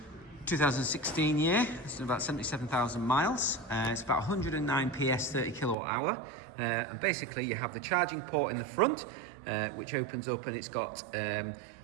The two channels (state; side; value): drops out; left; at 5.8 s